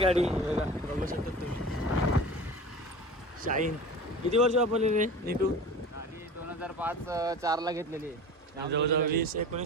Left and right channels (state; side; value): normal; both; correlation 0.37